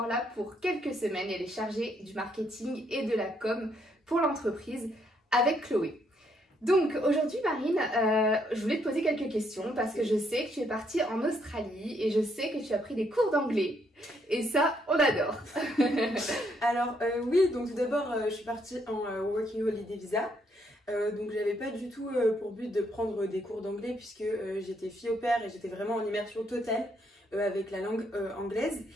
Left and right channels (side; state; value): both; normal; correlation 0.73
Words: là pour quelques semaines. Elle est chargée du marketing et de la com pour l'entreprise avec Chloé. Donc aujourd'hui Marine, je voulais te poser quelques questions parce que je sais que tu es partie en Australie et je sais que tu as pris des cours d'anglais et ça on adore. Alors oui, donc tout d'abord je suis partie en Working Holiday Visa, donc j'avais pas du tout pour but de prendre des cours d'anglais puisque j'étais fille au pair et j'étais vraiment en immersion totale avec la langue anglaise,